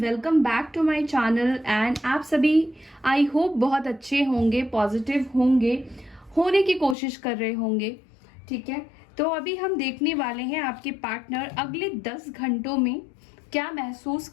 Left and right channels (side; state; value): right; drops out; at 7.0 s